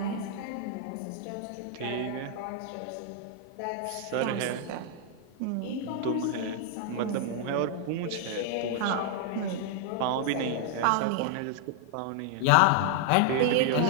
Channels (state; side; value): different; both; correlation 0.00